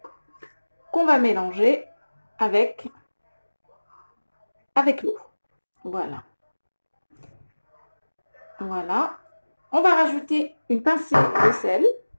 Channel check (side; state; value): both; inverted; correlation -1.00